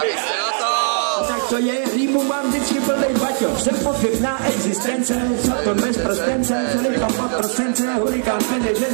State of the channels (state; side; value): silent; left; digital silence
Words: Tak to je, rýmu mám vždycky plnej baťo. Jsem pochybná existence, co to bez prostence, celý pod procence, hurikán